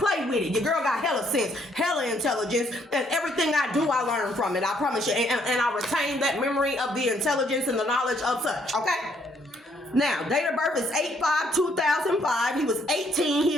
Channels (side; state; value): both; normal; correlation 0.69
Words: with it. Your girl got hella sense, hella intelligence, and everything I do, I learn from it. I promise you. And I retain that memory of the intelligence and the knowledge of such, okay? Now, date of birth is 8/5/2005. He was 18. He